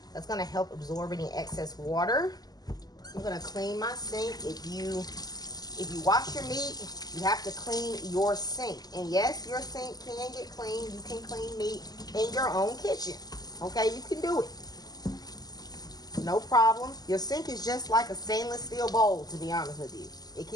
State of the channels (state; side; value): late; right; 0.19 ms